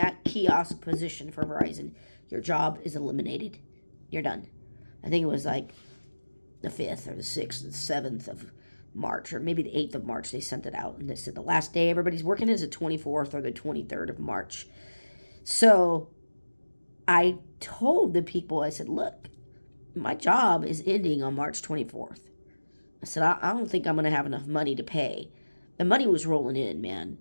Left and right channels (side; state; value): both; inverted; correlation -1.00